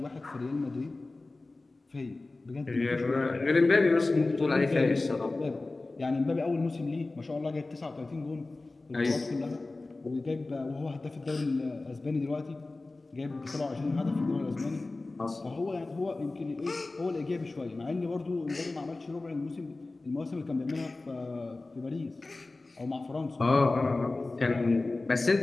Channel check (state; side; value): quieter; right; 3.2 dB